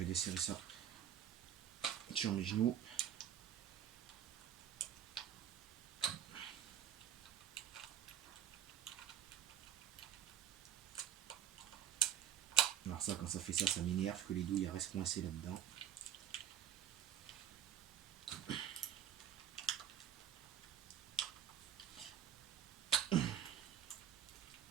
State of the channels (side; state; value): left; quieter; 10.0 dB